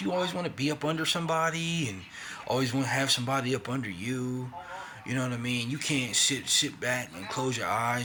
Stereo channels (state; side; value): identical; both; correlation 1.00